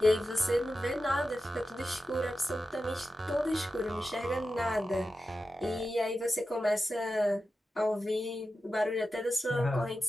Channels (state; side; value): normal; both; correlation 0.92